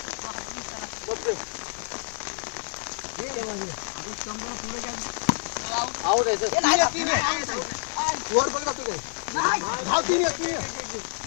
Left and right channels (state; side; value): silent; right; 60 dB below the other